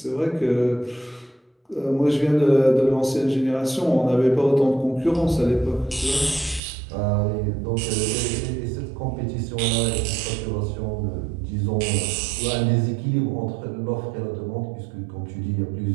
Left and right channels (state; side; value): drops out; left; at 6.6 s